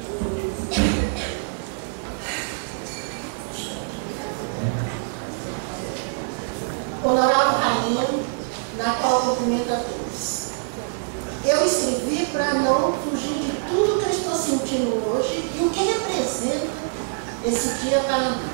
Honorável Rainha, na qual cumprimento a todos. Eu escrevi para não fugir de tudo que eu estou sentindo hoje e o que representa esse dia para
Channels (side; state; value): left; silent; digital silence